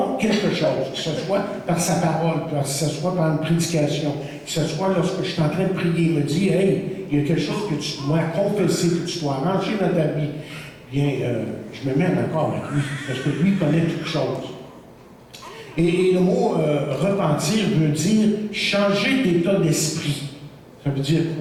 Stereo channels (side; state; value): both; identical; correlation 1.00